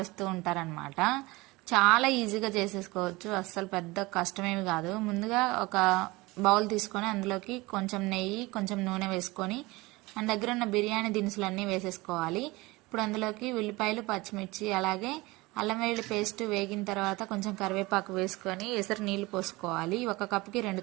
ఉంటారనమాట. చాలా ఈజీగా చేసేసుకోవచ్చు, అస్సలు పెద్ద కష్టమేమి కాదు. ముందుగా ఒక బౌల్ తీసుకొని అందులోకి కొంచెం నెయ్యి, కొంచెం నూనె వేసుకొని మన దగ్గర ఉన్న బిర్యానీ దినుసులన్నీ వేసేసుకోవాలి. ఇప్పుడు అందులోకి ఉల్లిపాయలు, పచ్చిమిర్చి, అలాగే అల్లం వెల్లుల్లి పేస్ట్ వేగిన తర్వాత కొంచెం కరివేపాకు వేసుకొని ఎసరు నీళ్లు పోసుకోవాలి. ఒక కప్పుకి 2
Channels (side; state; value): left; quieter; 22.0 dB